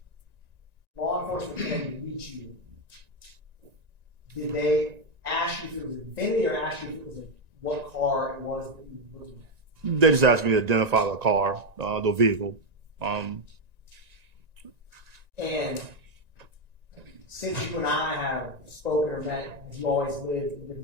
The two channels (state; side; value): late; left; 1.9 ms